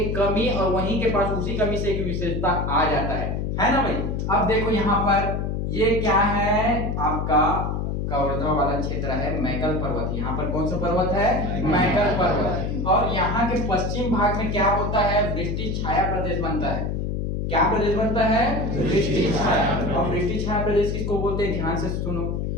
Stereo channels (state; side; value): noise; left; hum, 1 dB below the sound